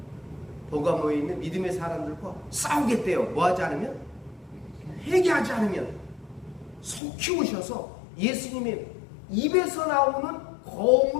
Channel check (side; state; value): right; drops out; at 7.0 s